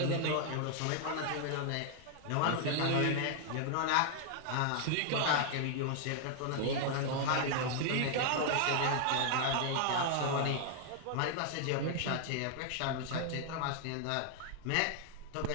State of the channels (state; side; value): different; both; correlation 0.00